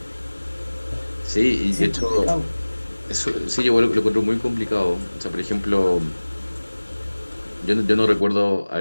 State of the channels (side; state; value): both; inverted; correlation -1.00